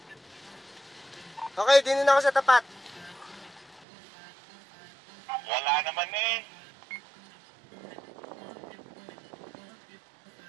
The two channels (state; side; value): drops out; left; at 3.9 s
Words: Okay, dito na ako sa tapat. Wala naman eh.